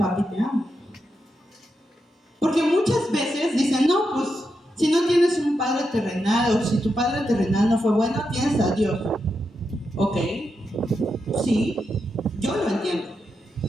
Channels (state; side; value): normal; both; correlation 0.86